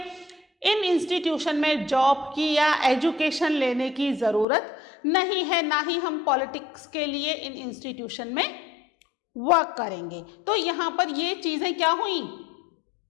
इन इंस्टीट्यूशन में जॉब की या एजुकेशन लेने की ज़रूरत नहीं है, ना ही हम पॉलिटिक्स के लिए इन इंस्टीट्यूशन में वर्क करेंगे। तो यहाँ पर ये चीज़ें क्या हुई,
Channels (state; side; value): drops out; right; at 4.5 s